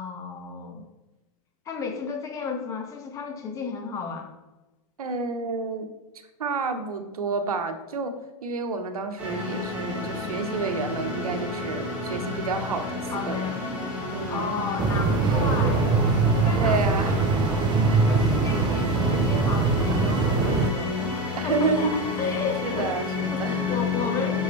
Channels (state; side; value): normal; both; correlation 0.19